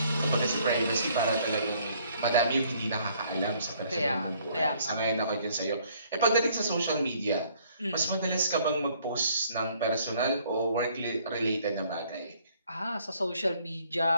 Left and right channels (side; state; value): both; inverted; correlation -0.63